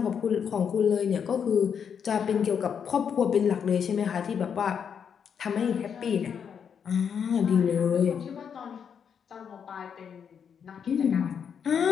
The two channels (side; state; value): right; quieter; 7.4 dB